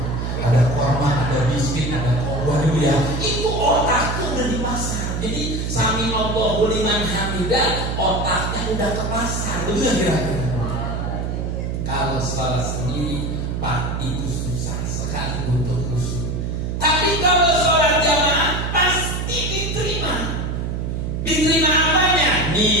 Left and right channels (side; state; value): right; noise; hum, 2 dB below the sound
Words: Ada korma, ada biskuit, ada kobar ya. Itu otaknya udah di pasar. Jadi sami Allahu liman hamidah, otaknya udah ke pasar. Betul kan kira-kira? Kalau salah sendiri, Pak, itu susah sekali untuk khusyuk. Tapi kalau sholat jamaah pasti diterima. Diterima apanya?